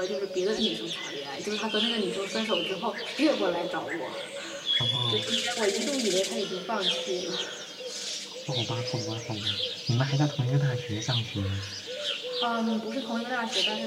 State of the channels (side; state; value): both; identical; correlation 1.00